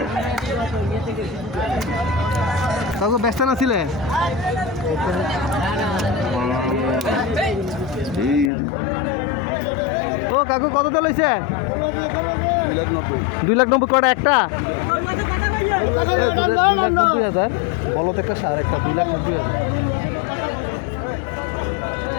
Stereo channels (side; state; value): right; drops out; at 8.5 s